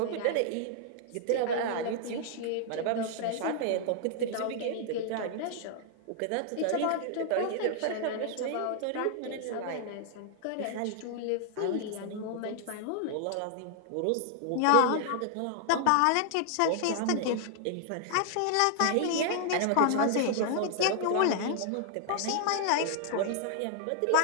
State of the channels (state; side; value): different; both; correlation -0.01